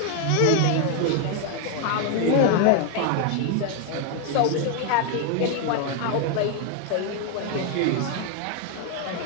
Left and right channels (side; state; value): both; different; correlation 0.01